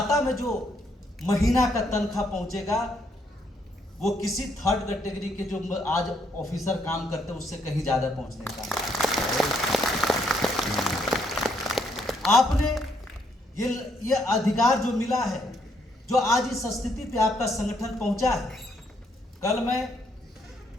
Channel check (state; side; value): normal; both; correlation 0.72